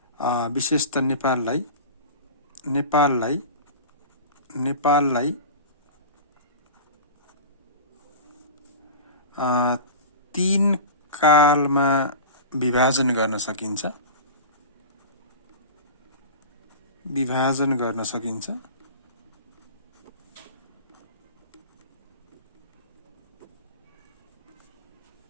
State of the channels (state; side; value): inverted; both; correlation -0.33